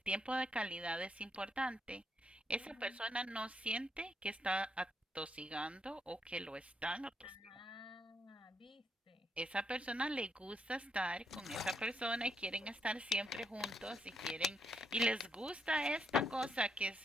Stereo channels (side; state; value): both; normal; correlation 0.77